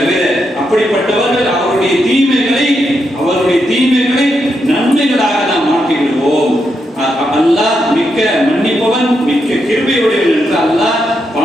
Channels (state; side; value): normal; both; correlation 0.82